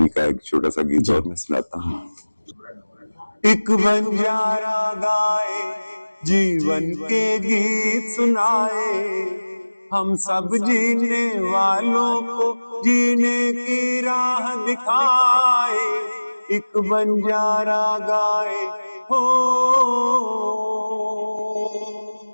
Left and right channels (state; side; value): inverted; both; correlation -1.00